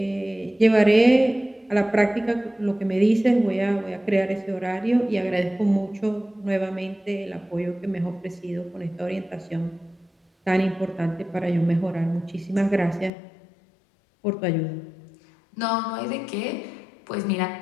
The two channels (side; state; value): right; drops out; at 13.1 s